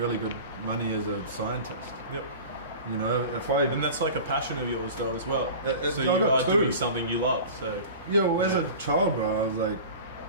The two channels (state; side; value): inverted; both; correlation -0.36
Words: good money as a scientist. You know, and that's like a passion of yours though as well. So you are doing something you love. So as a child, bro, I was like,